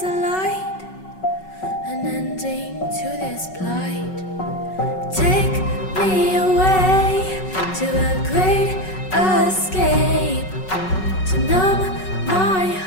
an ending to this plight. Take me away to a great escape, to numb my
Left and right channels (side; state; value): right; late; 5.4 ms